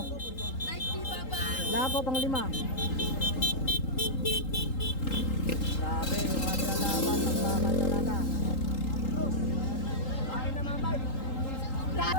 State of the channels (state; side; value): late; right; 3.8 ms